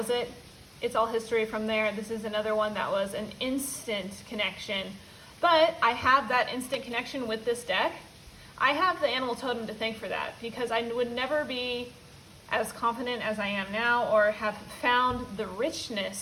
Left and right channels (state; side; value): identical; both; correlation 1.00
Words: it. It's all history from there. This is another one that was an instant connection. But I have that instant connection with this deck. I have the animal totem to thank for that, because I would never be as confident as I am now or have found the